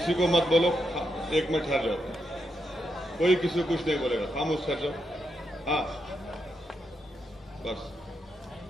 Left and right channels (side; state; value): both; normal; correlation 0.82